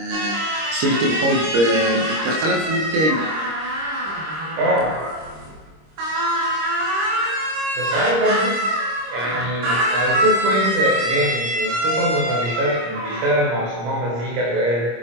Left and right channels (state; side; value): late; left; 26 ms